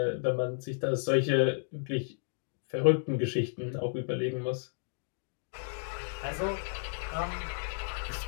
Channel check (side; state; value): right; silent; digital silence